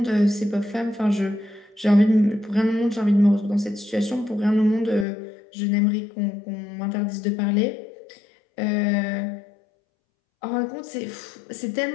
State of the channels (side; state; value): right; drops out; at 5.1 s